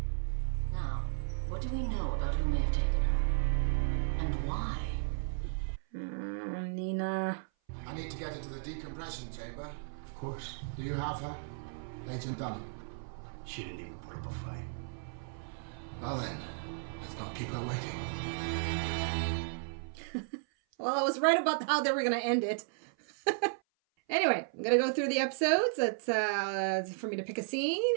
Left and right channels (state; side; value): silent; left; 55 dB below the other